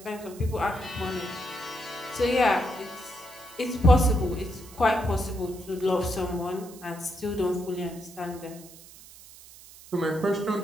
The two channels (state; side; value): noise; right; hiss, 19 dB below the sound